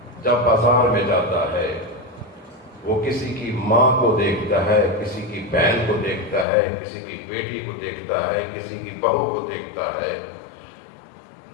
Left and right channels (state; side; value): drops out; right; at 6.5 s